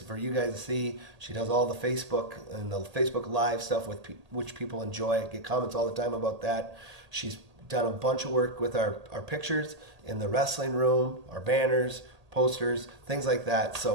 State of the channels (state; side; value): late; left; 1.8 ms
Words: you guys to see. She does all the Facebook and the Facebook Live stuff with which people enjoy. I get comments all the time about that. She's done a bunch of work with our pictures in the wrestling room, our banners, posters, things like that.